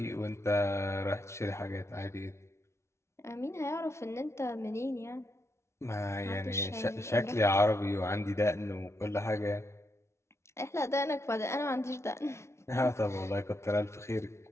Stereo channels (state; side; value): late; right; 0.13 ms